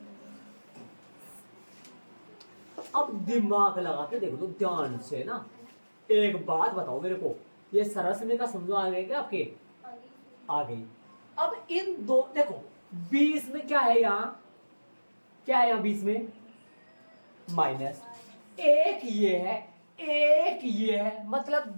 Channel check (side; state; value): both; inverted; correlation -1.00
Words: अब दिमाग लगा के देख लो ध्यान से ना। एक बात बताओ मेरे को, ये सरसने का समझो आ गया क्या आपके, आ गई। अब इन दो देखो बीच में क्या है, यहाँ क्या है, यहाँ बीच में माइनस, एक ये है एक ये है, मतलब